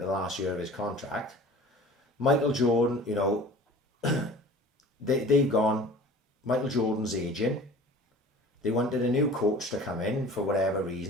the last year of his contract. Michael Jordan, you know, they've gone. Michael Jordan's aging. They wanted a new coach to come in for whatever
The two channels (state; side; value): normal; both; correlation 0.44